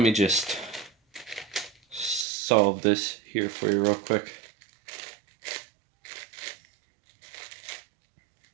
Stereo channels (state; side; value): drops out; left; at 2.2 s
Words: me just solve this here for you real quick.